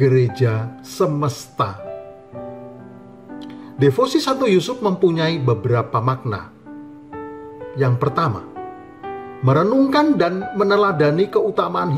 semesta. Devosi Santo Yusuf mempunyai beberapa makna. Yang pertama, merenungkan dan meneladani keutamaan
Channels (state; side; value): identical; both; correlation 1.00